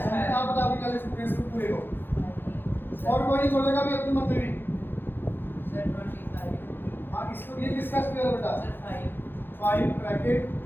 आप बताओ क्या लिख सकते हैं इसको पूरे को, और कोई नहीं बोलेगा भी अपनी मन में भी। Sir, 25. हाँ, इसको ये किसका स्क्वायर है बेटा? Sir, 5. 5 bracket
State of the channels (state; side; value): late; right; 0.10 ms